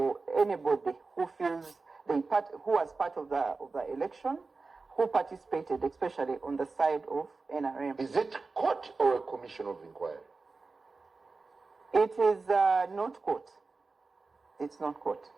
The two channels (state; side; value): quieter; left; 4.0 dB